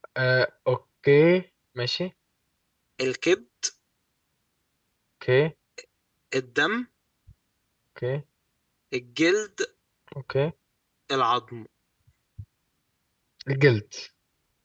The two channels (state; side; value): identical; both; correlation 1.00